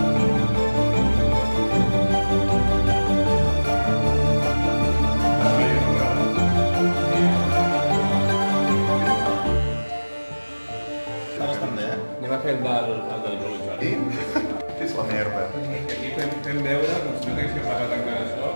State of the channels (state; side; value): inverted; both; correlation -1.00